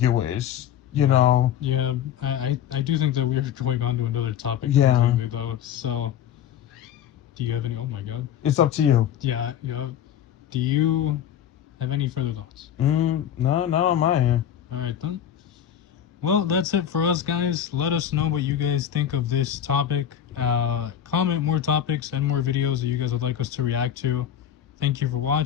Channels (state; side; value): quieter; right; 9.7 dB